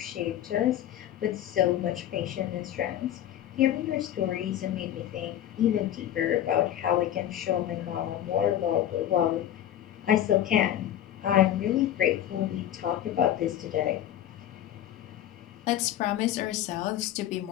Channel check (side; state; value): right; quieter; 11.6 dB